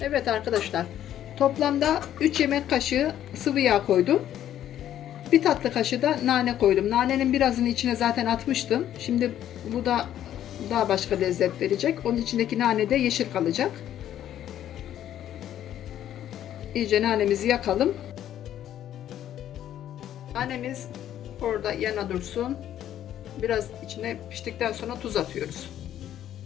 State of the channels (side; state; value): right; quieter; 11.3 dB